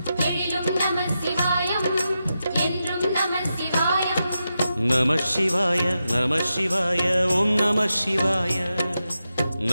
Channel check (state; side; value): inverted; both; correlation -0.89